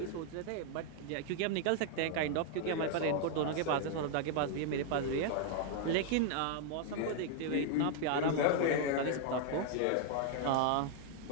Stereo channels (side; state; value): both; different; correlation 0.00